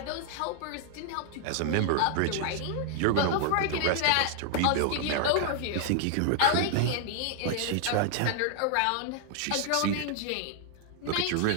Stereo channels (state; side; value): different; both; correlation 0.00